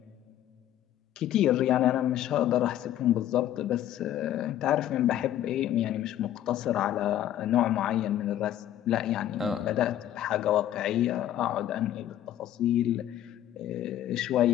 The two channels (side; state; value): right; quieter; 12.1 dB